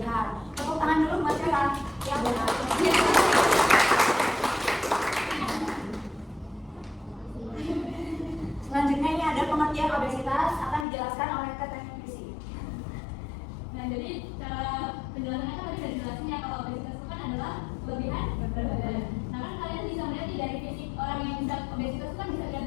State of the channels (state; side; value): drops out; right; at 10.9 s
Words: Tepuk tangan dulu buat siapa? Yang benar. Selanjutnya ini ada pengertian obesitas akan dijelaskan oleh Teteh Krisi. Nah, jadi cara penjelasannya kan tadi sudah dijelasin ya, kalau obesitas itu kan adalah kelebihan berat badan. Nah, kan kalian bisa melihat nih dari fisik orang yang bisa obesitas itu kan bisa dilihat